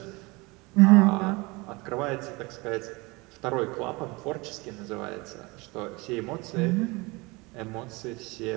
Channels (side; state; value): left; quieter; 24.9 dB